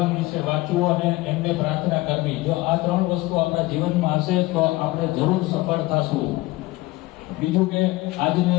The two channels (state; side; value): quieter; right; 19.7 dB